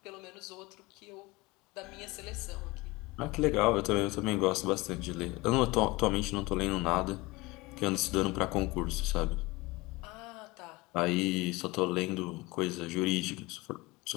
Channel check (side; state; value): right; quieter; 21.8 dB